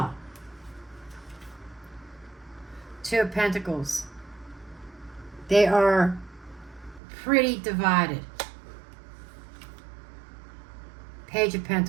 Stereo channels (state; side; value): drops out; left; at 7.0 s